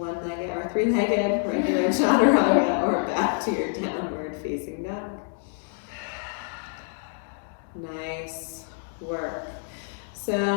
or three-legged regular chaturanga, or back to your downward facing dog. Nice work. So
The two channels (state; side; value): silent; right; 60 dB below the other